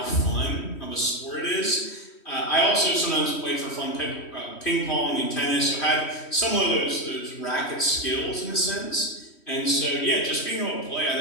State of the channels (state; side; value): late; right; 3.1 ms